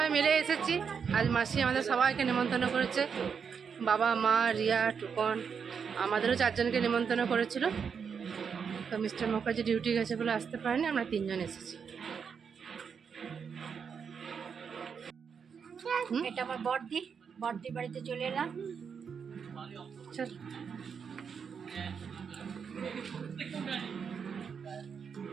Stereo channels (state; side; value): quieter; left; 6.5 dB